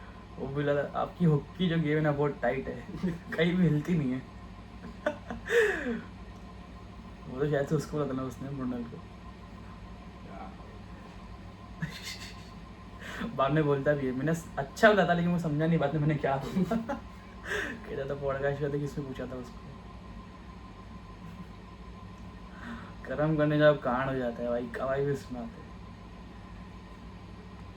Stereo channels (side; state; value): both; identical; correlation 1.00